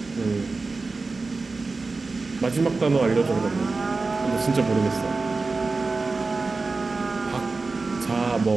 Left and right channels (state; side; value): quieter; left; 3.8 dB